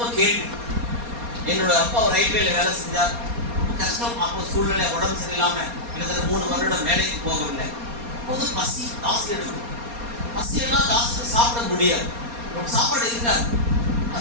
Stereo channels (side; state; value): left; late; 4.2 ms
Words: கேள்வி. என்னோட அப்பா ஒரு ரயில்வேல வேலை செஞ்சார். கஷ்டம். அப்போ சூழ்நிலை உடம்பு சரியில்லாம கிட்டத்தட்ட 3 வருடம் வேலைக்கு போகவில்லை. அப்போது பசி ஜாஸ்தி எடுக்கும். பசி எல்லாம் ஜாஸ்தி சாப்பிட முடியாது. சாப்பாடு இருக்காது.